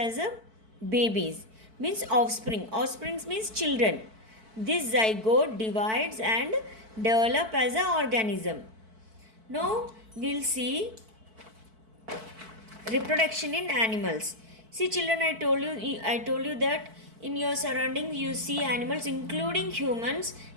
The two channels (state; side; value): late; left; 4.5 ms